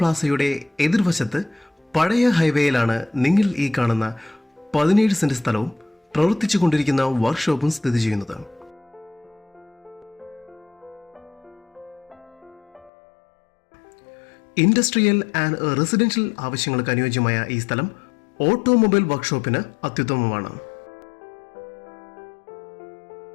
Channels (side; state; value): right; drops out; at 12.9 s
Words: എതിർവശത്ത് പഴയ ഹൈവേയിലാണ് നിങ്ങൾ ഈ കാണുന്ന 17 സെന്റ് സ്ഥലവും പ്രവർത്തിച്ചുകൊണ്ടിരിക്കുന്ന വർക്ക്ഷോപ്പും സ്ഥിതി ചെയ്യുന്നത്. ഇൻഡസ്ട്രിയൽ ആൻഡ് റെസിഡൻഷ്യൽ ആവശ്യങ്ങൾക്ക് അനുയോജ്യമായ ഈ സ്ഥലം ഓട്ടോമൊബൈൽ വർക്ക്ഷോപ്പിന് അത്യുത്തമമാണ്.